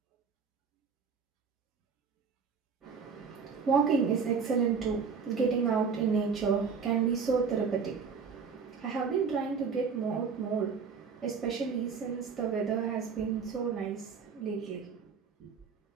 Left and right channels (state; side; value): quieter; left; 5.8 dB